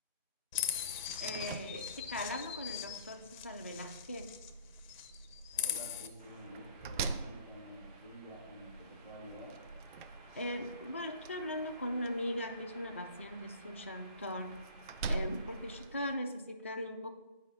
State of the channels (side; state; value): both; inverted; correlation -0.47